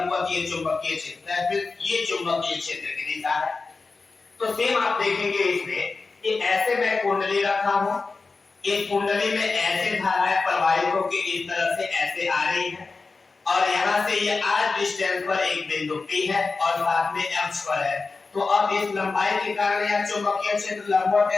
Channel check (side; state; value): right; quieter; 4.1 dB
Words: ये चुंबकीय क्षेत्र, ये चुंबकीय क्षेत्र की दिशा है। तो सेम आप देखेंगे इसमें कि ऐसे मैं कुंडली रखा हूं, इस कुंडली में ऐसे धाराएं प्रवाहित होकर इस तरह से ऐसे आ रही है, और यहाँ से ये r डिस्टेंस पर एक बिंदु P है और साथ में x पर है। तो अब इस लंबाई के कारण यहाँ चुंबकीय क्षेत्र लंबवत